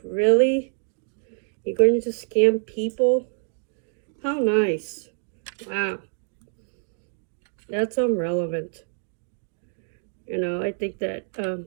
really? You're going to scam people? How nice. Wow. That's irrelevant. You know, I think that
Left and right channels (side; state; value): left; silent; 61 dB below the other